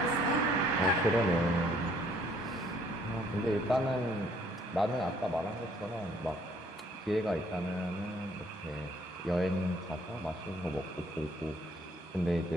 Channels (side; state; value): both; normal; correlation 0.63